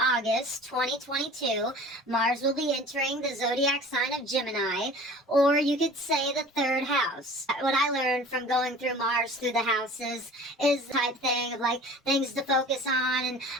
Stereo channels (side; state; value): both; normal; correlation 0.43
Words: 2022. Mars will be entering the zodiac sign of Gemini, or you could say the third house. What I learned from going through Mars through the houses is the type thing of like things to focus on, and